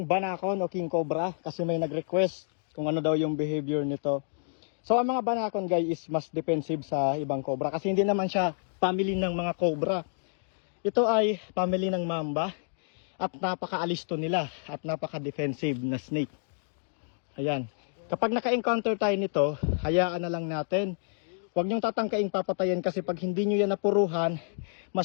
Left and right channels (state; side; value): silent; right; digital silence